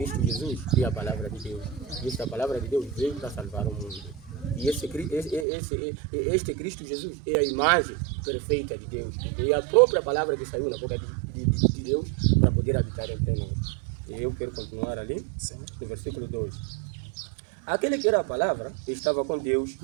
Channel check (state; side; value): drops out; left; at 5.5 s